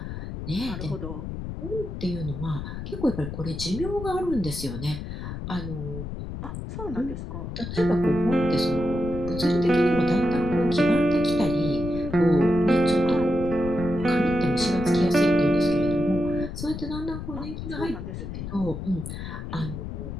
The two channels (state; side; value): noise; left; rumble, 7 dB below the sound